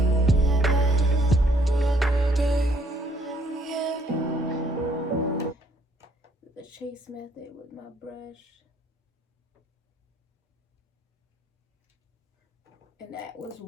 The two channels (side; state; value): both; normal; correlation 0.66